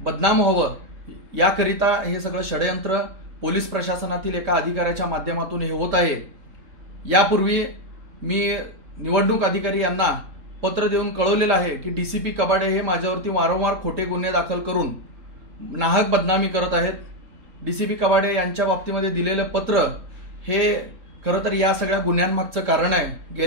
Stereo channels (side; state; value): left; late; 3.8 ms